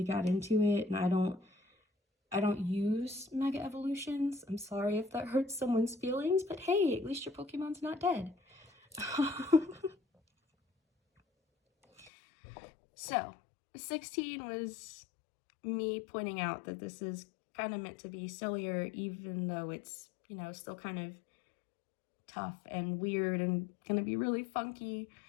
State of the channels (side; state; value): right; drops out; at 12.1 s